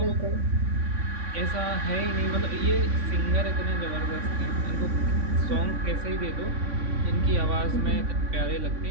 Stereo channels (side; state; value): left; late; 3.5 ms